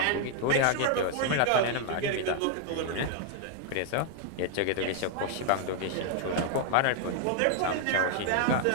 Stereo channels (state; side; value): different; both; correlation 0.00